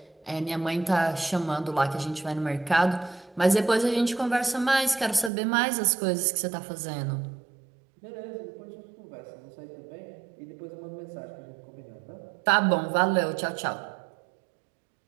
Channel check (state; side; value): drops out; left; at 5.3 s